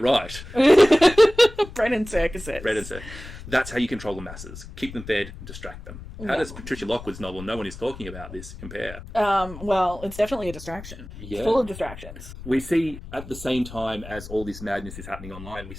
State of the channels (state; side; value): noise; left; rumble, 14 dB below the sound